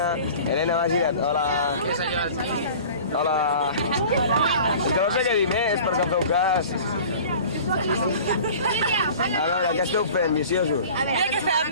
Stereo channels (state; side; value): inverted; both; correlation -0.43